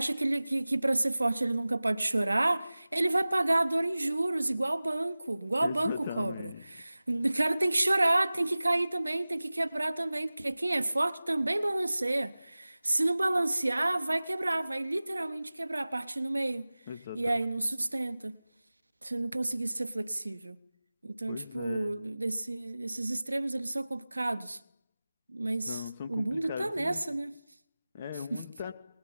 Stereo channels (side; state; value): both; inverted; correlation -0.98